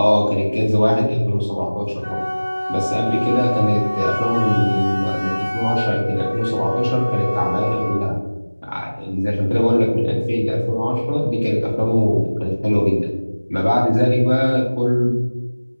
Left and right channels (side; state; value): both; inverted; correlation -1.00